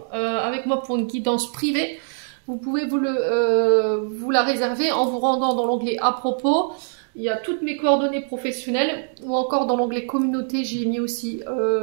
avec moi pour une guidance privée, vous pouvez vous la réserver en vous rendant dans l'onglet à propos. Il y a toutes mes coordonnées professionnelles ou encore dans l'onglet communauté, j'ai mis aussi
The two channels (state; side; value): silent; left; digital silence